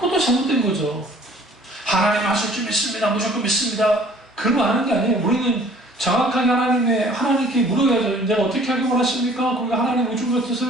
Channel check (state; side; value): normal; both; correlation 0.53